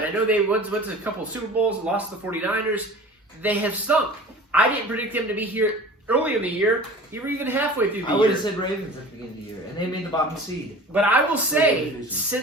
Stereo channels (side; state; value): both; normal; correlation 0.40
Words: I know they went to a couple of Super Bowls, lost to the 49ers. They have stunk. I didn't predict them to be here early in the year, you were even halfway through the I year. would have said Ravens at the beginning of the year, and they made the bottom seed. But I will say,